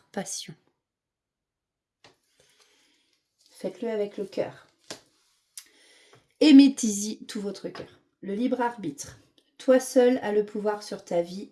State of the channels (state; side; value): identical; both; correlation 1.00